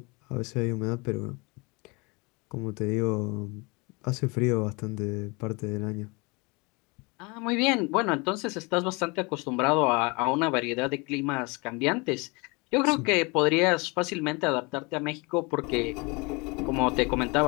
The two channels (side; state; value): right; quieter; 27.9 dB